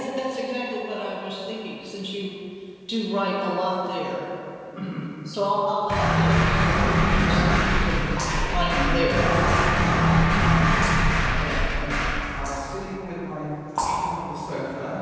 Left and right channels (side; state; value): both; identical; correlation 1.00